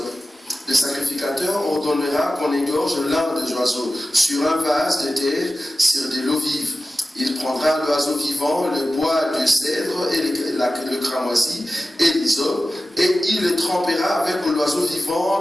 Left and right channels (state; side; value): normal; both; correlation 0.94